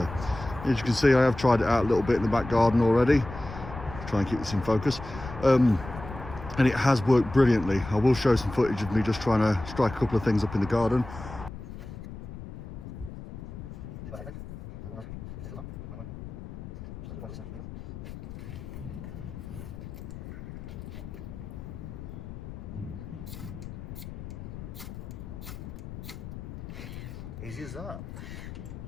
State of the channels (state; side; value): noise; left; rumble, 11 dB below the sound